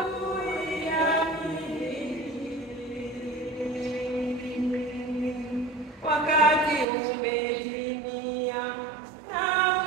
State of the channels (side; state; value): left; drops out; at 6.9 s